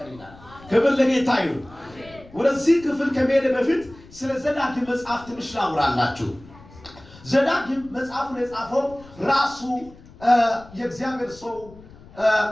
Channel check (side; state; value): left; noise; rumble, 22 dB below the sound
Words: ይላል። ክብር ለጌታ ይሁን። ወደዚህ ክፍል ከመሄድ በፊት ስለ ዘዳግም መጽሐፍ ትንሽ ላውራላችሁ። ዘዳግም መጽሐፉን የጻፈው ራሱ የእግዚአብሔር ሰው